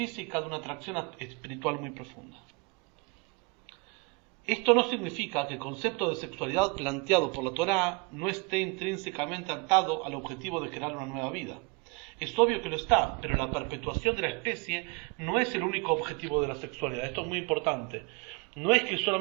de una atracción espiritual muy profunda. Esto no significa que el concepto de sexualidad planteado por la Torá no esté intrínsecamente atado al objetivo de crear una nueva vida. Es obvio que lo está, pero la perpetuación de la especie no es el único objetivo de la sexualidad. Esto es muy importante. No es que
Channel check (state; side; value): quieter; left; 28.9 dB